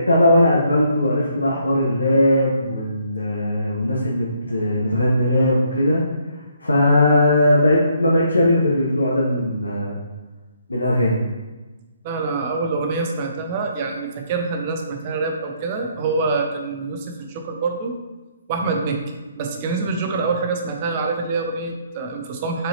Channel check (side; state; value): both; inverted; correlation -0.70